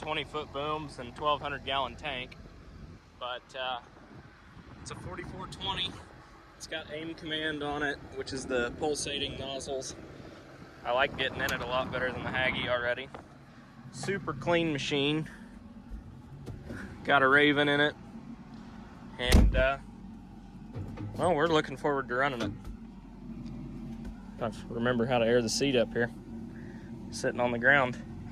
foot booms and 1,200 gallon tank, but it's a 4420. It's got aim command on it, which is the pulsating nozzles. I like getting in it a lot better than the Hagie already. Super clean machine. Got a Raven in it, and well, we're looking forward to running it. I remember how to air the seat up here. Sitting on the ground.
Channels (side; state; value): both; identical; correlation 1.00